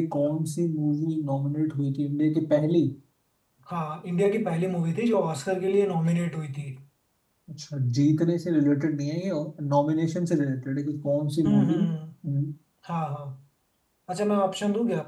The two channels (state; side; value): identical; both; correlation 1.00